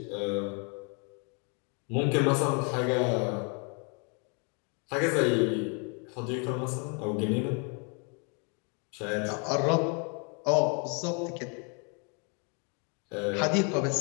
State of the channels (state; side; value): quieter; right; 36.9 dB